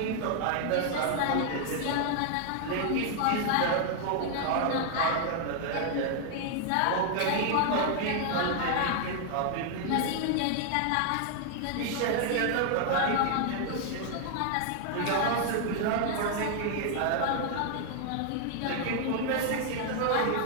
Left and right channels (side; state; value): both; different; correlation 0.00